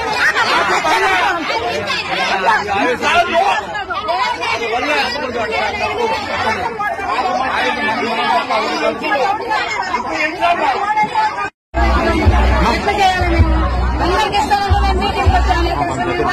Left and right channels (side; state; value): both; identical; correlation 1.00